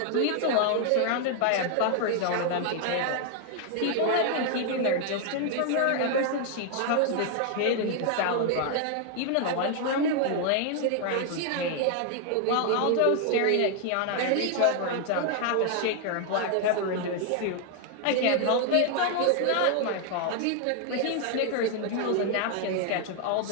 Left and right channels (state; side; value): different; both; correlation 0.00